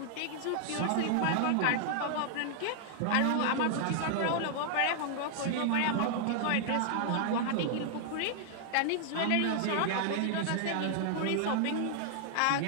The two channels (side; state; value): both; different; correlation 0.00